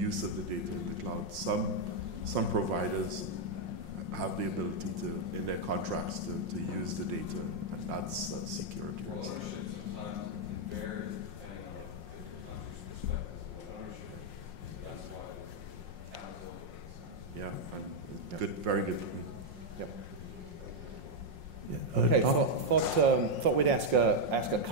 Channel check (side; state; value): left; late; 5.6 ms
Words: of the data in the cloud. Some providers have the ability to, in their contracts, to use the data, and that's a security risk. Yeah, and good, very good point. Yep. Yeah. Okay, thought we'd ask a